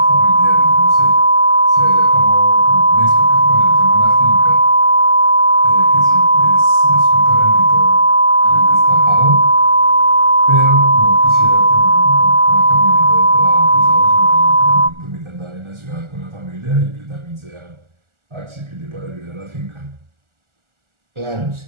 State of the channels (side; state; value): left; late; 1.4 ms